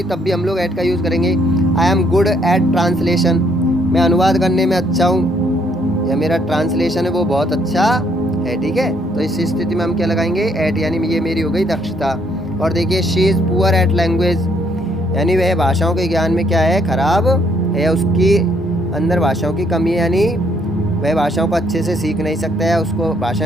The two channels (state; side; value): normal; both; correlation 0.68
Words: तब भी हम लोग एट का यूज़ करेंगे। I am good at translation, मैं अनुवाद करने में अच्छा हूँ, या मेरा ट्रांसलेशन है वो बहुत अच्छा है, ठीक है। तो इस स्थिति में हम क्या लगाएंगे, एट, यानी ये मेरी हो गई दक्षता। और देखिए she is poor at language, यानी वह भाषाओं के ज्ञान में क्या है, खराब है, उसकी अंदर भाषाओं की कमी है, यानी वह भाषाओं को अच्छे से सीख नहीं सकता है, उसको भाषा